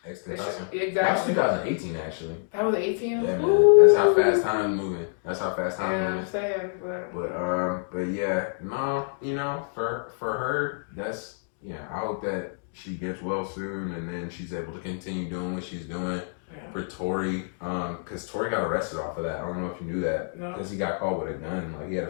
Tentacion. Exactly. That was 2018, actually. That was 18? Yeah, man. That's how fast time's moving. Yeah, I'm saying. But yeah, no, for her, that's, I hope that she gets well soon and then she's able to continue doing what she's doing. Yeah. For Tory, because Tory got arrested off of that. I don't know if you knew that. Because he got caught with a gun. Like, he had a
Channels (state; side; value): silent; right; digital silence